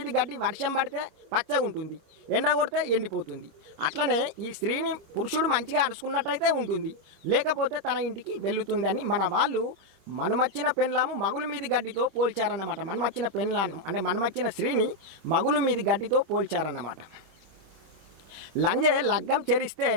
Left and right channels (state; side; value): late; left; 25 ms